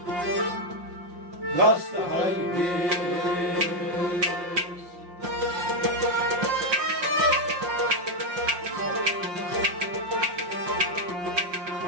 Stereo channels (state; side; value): late; left; 5.6 ms